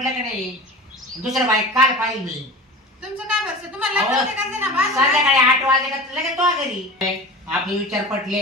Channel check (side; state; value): both; normal; correlation 0.34